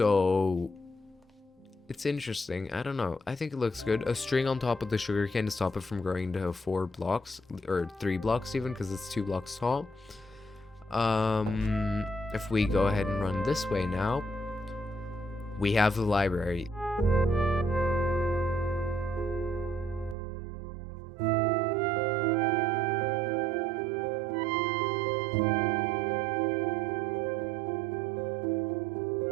it's interesting. I don't know. I think it looks good. A string on top of the sugarcane to stop it from growing to 4 blocks, or 3 blocks even, because it's 2 blocks tall. If we go ahead and run this way now, we have the library.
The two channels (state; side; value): drops out; left; at 20.2 s